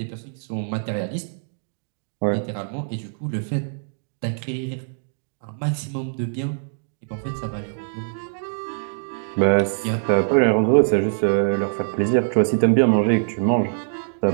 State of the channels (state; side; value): silent; left; digital silence